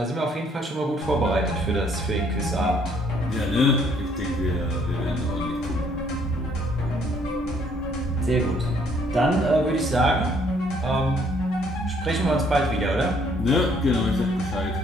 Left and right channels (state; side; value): normal; both; correlation 0.64